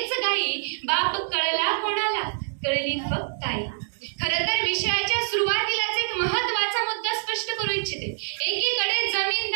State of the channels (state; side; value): silent; left; digital silence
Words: गाई. बाप कळला कोणाला, कळली फक्त आई. खरं तर विषयाच्या सुरुवातीलाच एक महत्वाचा मुद्दा स्पष्ट करू इच्छिते. एकीकडे